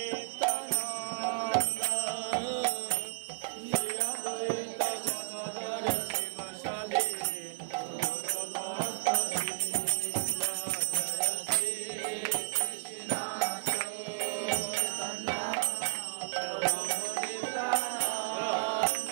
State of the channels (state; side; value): silent; left; digital silence